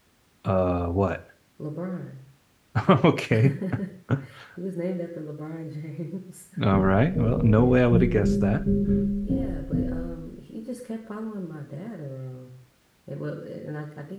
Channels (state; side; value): identical; both; correlation 1.00